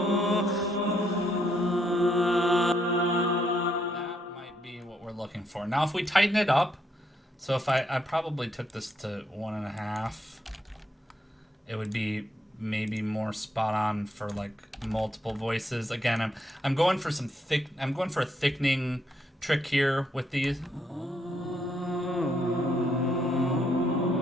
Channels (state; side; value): normal; both; correlation 0.75